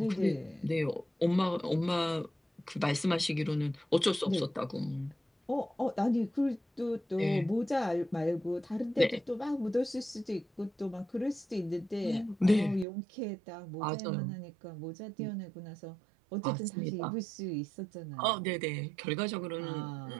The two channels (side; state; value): left; drops out; at 12.9 s